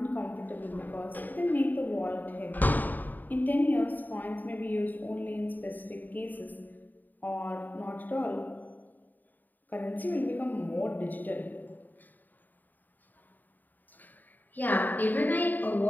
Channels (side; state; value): right; late; 0.087 ms